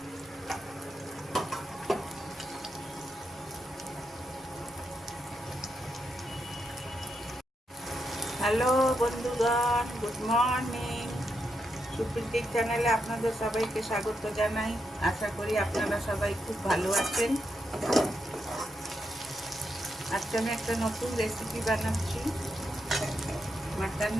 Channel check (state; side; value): normal; both; correlation 0.83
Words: হ্যালো বন্ধুগণ, গুড মর্নিং। সুপ্রীতির চ্যানেলে আপনাদের সবাইকে স্বাগত জানাই। আশা করি আপনারা সবাই খুব ভালো আছেন। আজকে আমি একটা নতুন রেসিপি বানাচ্ছি